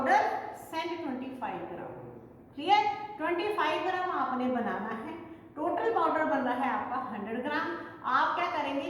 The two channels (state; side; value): identical; both; correlation 1.00